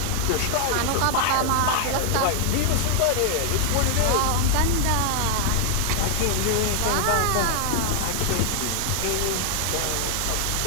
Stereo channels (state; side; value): different; both; correlation 0.00